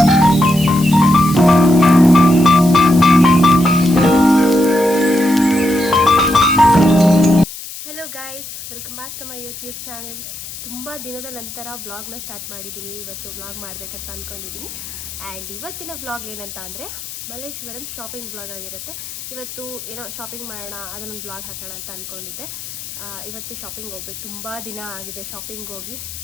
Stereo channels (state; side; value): noise; left; hiss, 11 dB below the sound